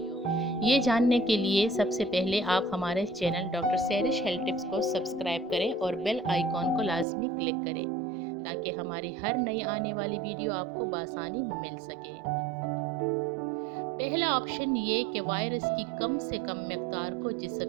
ये जानने के लिए सबसे पहले आप हमारे channel doctor Sairish health tips को सब्सक्राइब करें और बेल आइकॉन को लाजमी क्लिक करें, ताकि हमारी हर नई आने वाली वीडियो आपको बासानी मिल सके। पहला ऑप्शन ये कि वायरस की कम से कम मकदार को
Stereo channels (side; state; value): left; drops out; at 7.1 s